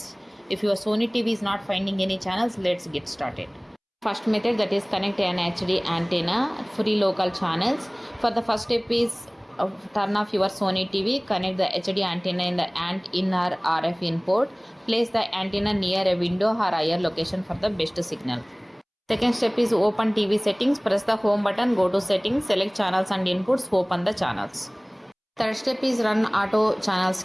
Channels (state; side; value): identical; both; correlation 1.00